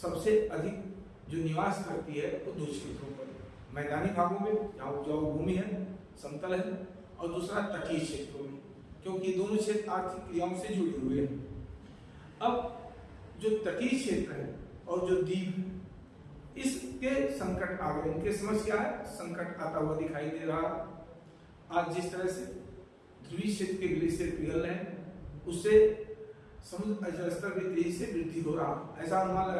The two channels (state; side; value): identical; both; correlation 1.00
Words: अधिक जो निवास करती है वो दो क्षेत्रों पर, मैदानी भागों में जहाँ उपजाऊ भूमि है, समतल है, और दूसरा तटीय क्षेत्रों में, क्योंकि दोनों क्षेत्र आर्थिक क्रियाओं से जुड़े हुए हैं। अब जो तटीय क्षेत्र है और जो द्वीप, इसके संकट आ गए। इनके समझ क्या है, संकट आता हुआ दिखाई दे रहा। आज जिस तरह से ध्रुवीय क्षेत्र के ग्लेशियर पिघल रहे हैं उससे समुद्र जल स्तर में तेजी से वृद्धि हो रहा। ऐसा अनुमान